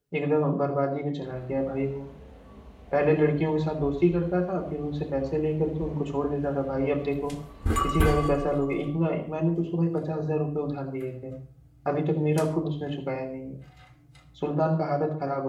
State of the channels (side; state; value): both; identical; correlation 1.00